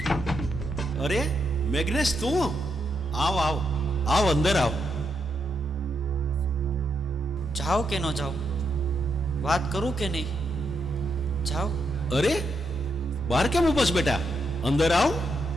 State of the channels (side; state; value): both; normal; correlation 0.81